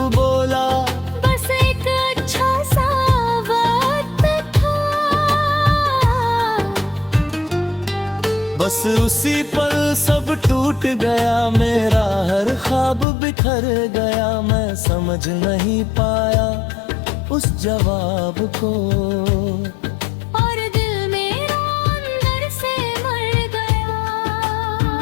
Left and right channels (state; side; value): drops out; right; at 13.1 s